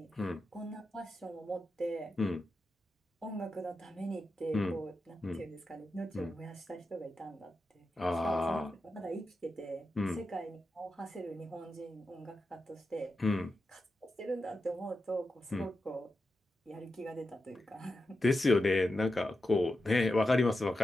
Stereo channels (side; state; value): both; normal; correlation 0.89